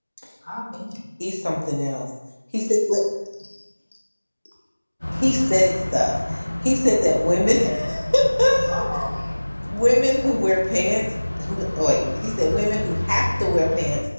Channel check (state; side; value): inverted; both; correlation -1.00